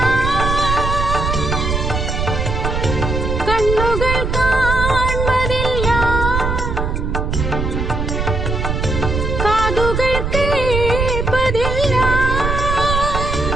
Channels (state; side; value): noise; right; rumble, 1 dB below the sound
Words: കണ്ണുകൾ കാൺമതില്ല, കാതുകൾ കേൾപ്പതില്ല.